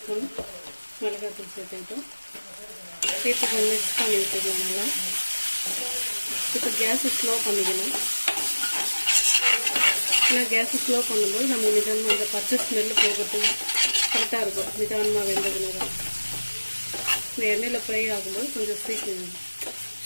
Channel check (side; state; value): both; inverted; correlation -1.00